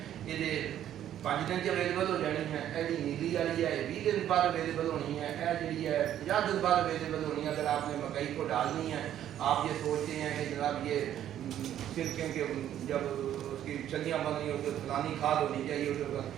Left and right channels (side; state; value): left; quieter; 11.2 dB